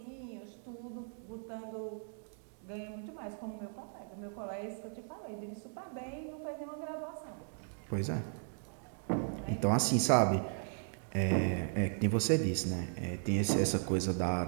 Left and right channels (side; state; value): left; silent; digital silence